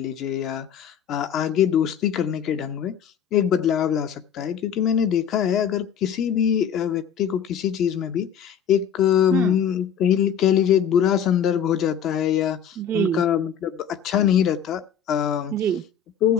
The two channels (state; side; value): quieter; right; 7.8 dB